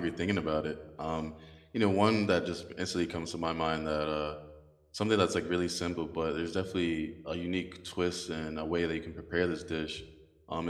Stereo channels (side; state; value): both; identical; correlation 1.00